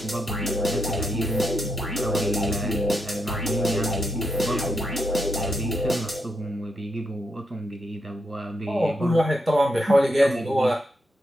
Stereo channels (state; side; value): normal; both; correlation 0.81